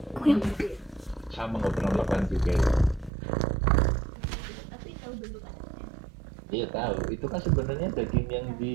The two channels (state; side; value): drops out; left; at 3.1 s